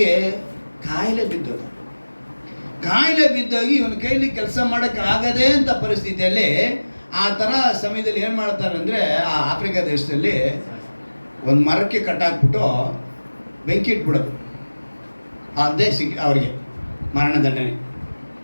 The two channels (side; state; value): both; inverted; correlation -1.00